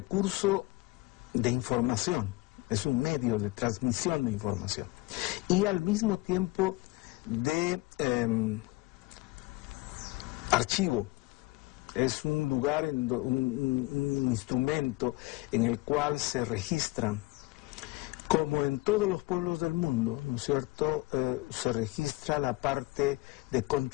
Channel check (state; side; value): quieter; right; 21.8 dB